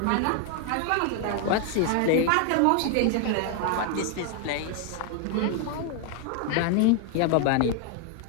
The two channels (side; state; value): both; different; correlation 0.01